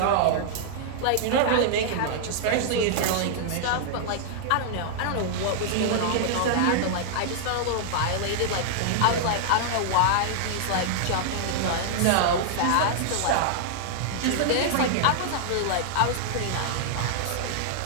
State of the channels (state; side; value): different; both; correlation -0.01